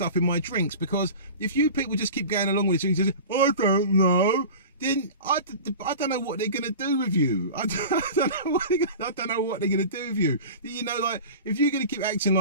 in my drinks, because if you people just keep going along with it and you say, I don't know, then I don't know what they're going to do with you. I don't know what they're going to do with you. You know, like, if you're going to keep acting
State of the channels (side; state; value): both; inverted; correlation -0.34